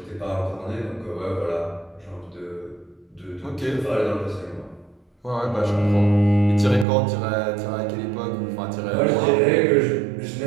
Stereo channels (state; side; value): drops out; left; at 6.9 s